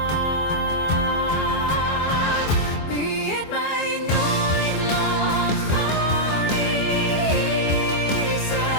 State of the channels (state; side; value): late; right; 24 ms